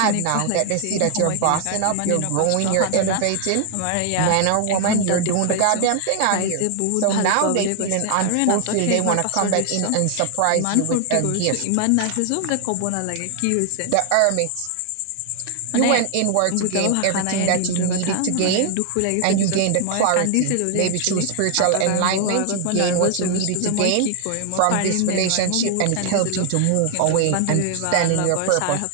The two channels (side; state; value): both; different; correlation 0.00